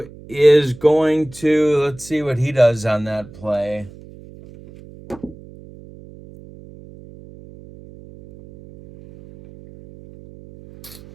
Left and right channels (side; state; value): right; noise; hum, 20 dB below the sound